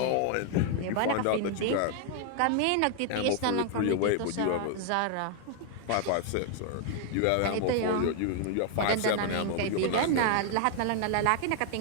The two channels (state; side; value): different; both; correlation 0.00